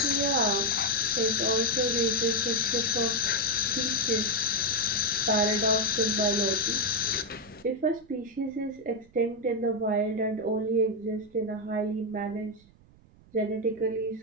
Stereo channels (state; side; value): noise; right; rumble, 27 dB below the sound